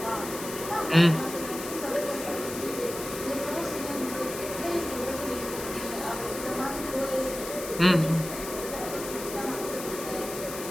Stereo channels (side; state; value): left; noise; hiss, 9 dB below the sound